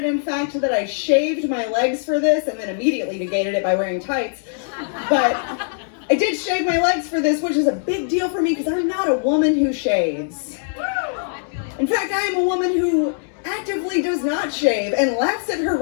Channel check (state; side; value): silent; right; digital silence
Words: in fact, that I shaved my legs for this and then immediately negated it by wearing tights. But I did shave my legs for this, which is a big deal for me because I'm not a woman who shaves. In fact, I am a woman who actively does not shave and laughs at her